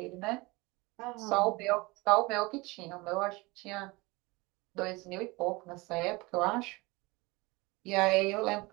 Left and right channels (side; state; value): left; quieter; 23.9 dB